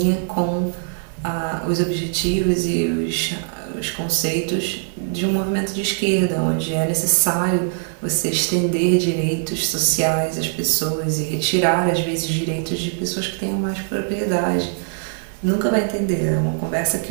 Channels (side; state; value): left; silent; digital silence